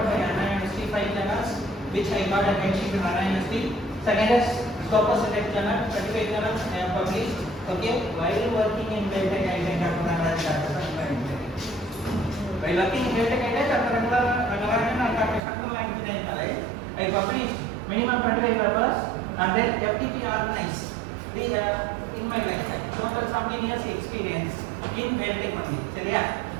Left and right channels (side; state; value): left; drops out; at 15.4 s